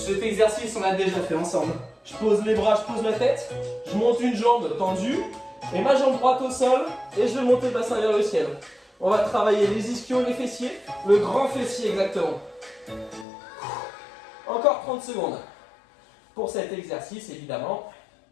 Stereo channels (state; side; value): drops out; right; at 13.2 s